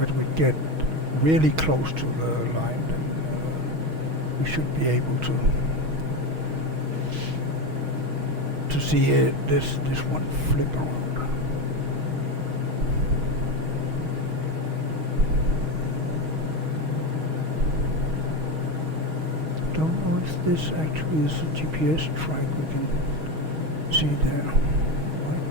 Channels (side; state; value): left; late; 6.3 ms